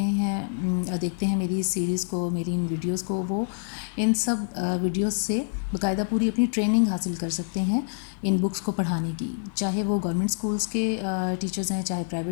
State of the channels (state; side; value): silent; right; 61 dB below the other